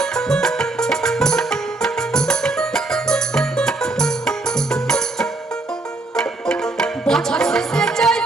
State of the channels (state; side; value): quieter; left; 3.1 dB